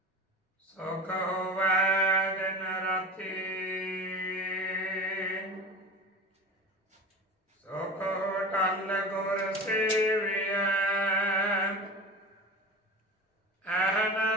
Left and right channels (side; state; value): both; normal; correlation 0.33